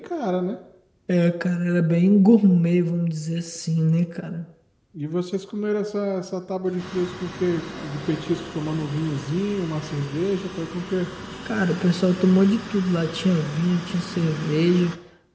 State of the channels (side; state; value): both; identical; correlation 1.00